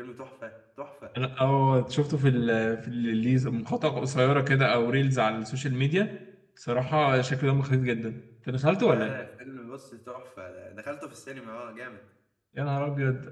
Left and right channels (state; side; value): identical; both; correlation 1.00